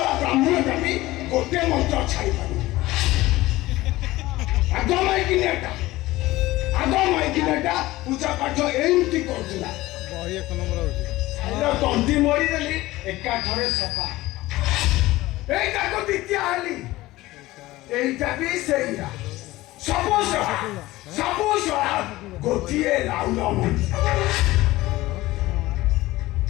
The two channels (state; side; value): quieter; right; 18.1 dB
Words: ବ୍ରାହ୍ମଣଟା ବି ଗୋଟିଏ ମନ୍ତ୍ର ଛାଡ଼ି ପାରୁନି। ଆଗ ମାଇକିନିଟା ପୂଜା ପାଠ ଏମିତି କରୁଥିଲା। ତଣ୍ଟି ମରିଦେଲି ଏକାଥରେ ସଫା। ଏଇଟାକୁ ଦ୍ୱିତୀୟ ହେଲି এইটা ବି ସେଇଆ ସବୁ ସଳା ଗୋଟିଏ ରାଉଳ ମଣିଷ।